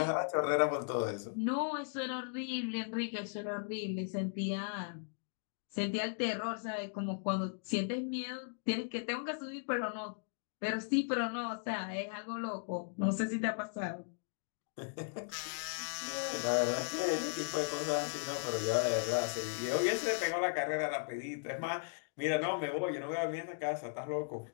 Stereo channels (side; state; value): right; silent; digital silence